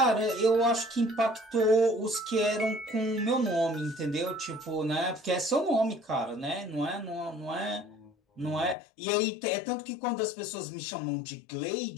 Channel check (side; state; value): right; drops out; at 8.8 s